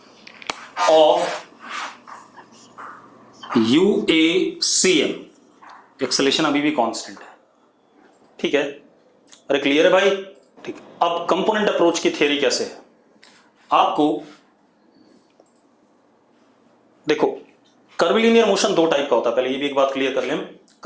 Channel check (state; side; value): identical; both; correlation 1.00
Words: ऑफ UACM, एक्सेलेरेशन अभी भी कांस्टेंट है, ठीक है? अरे क्लियर है भाई? ठीक। अब कंपोनेंट अप्रोच की थ्योरी कैसे है, आपको देखो, कर्विलिनियर मोशन दो टाइप का होता है, पहले ये भी एक बात क्लियर कर लें,